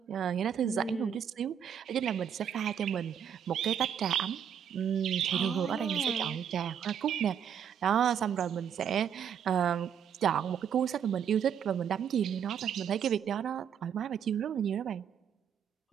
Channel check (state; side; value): quieter; left; 8.3 dB